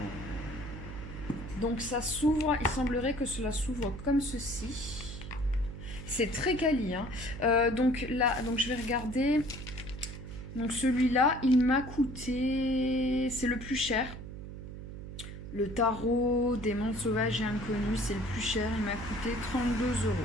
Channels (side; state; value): right; noise; hum, 10 dB below the sound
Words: Donc ça s'ouvre, il semblerait que cela s'ouvre comme ceci. C'est très quali. Hein. Donc là, je vais regarder. Donc celui-là, il m'a coûté... C'est le plus cher. Le tarot des mondes sauvages et inconnus, c'est le plus cher. Il m'a coûté 32 €.